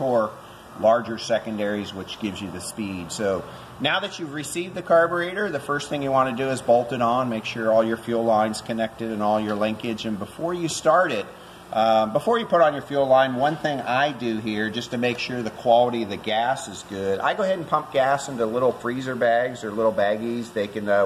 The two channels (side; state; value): both; identical; correlation 1.00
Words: larger secondaries, which gives you the speed. So now that you've received the carburetor, the first thing you want to do is bolt it on, make sure all your fuel lines connected and all your linkage. And before you start it, before you put on your fuel line, one thing I do here just to make sure the quality of the gas is good, I go ahead and pump gas into little freezer bags or little baggies. They can